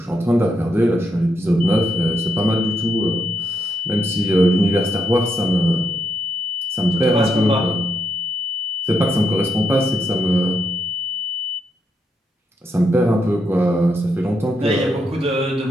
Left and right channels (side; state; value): both; normal; correlation 0.80